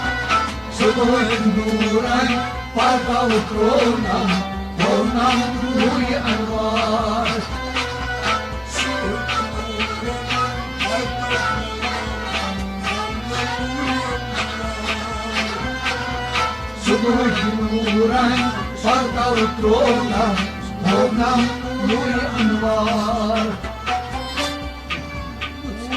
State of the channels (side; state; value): both; identical; correlation 1.00